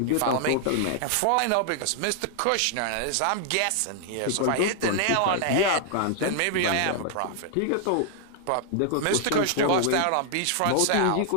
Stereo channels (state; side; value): different; both; correlation 0.00